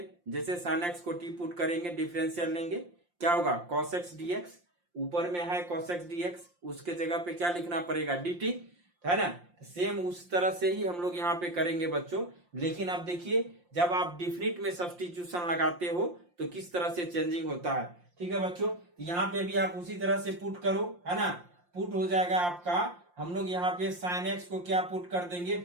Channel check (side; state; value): left; late; 5.7 ms